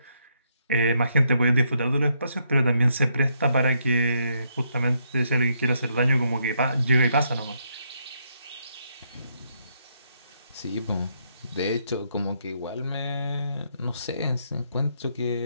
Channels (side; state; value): both; inverted; correlation -0.76